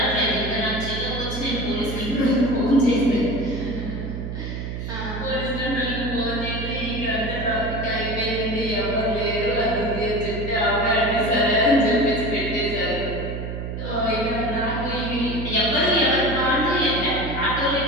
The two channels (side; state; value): right; noise; hum, 6 dB below the sound